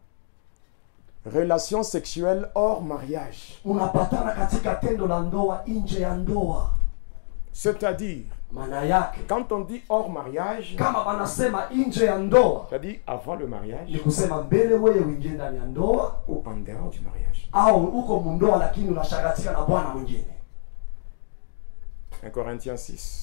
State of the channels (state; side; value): silent; right; digital silence